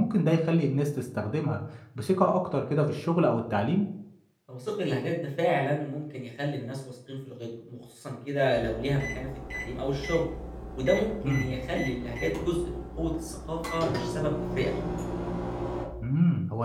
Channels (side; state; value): both; identical; correlation 1.00